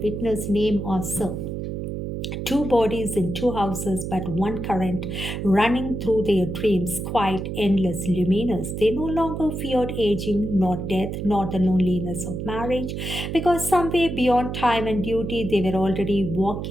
witness, name, or serve. Two bodies in two houses, but one current running through their dreams, quite endless, luminous. They no longer feared aging, nor death, nor the loneliness of marriage, because somewhere beyond time and duty they were already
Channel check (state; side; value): noise; right; hum, 5 dB below the sound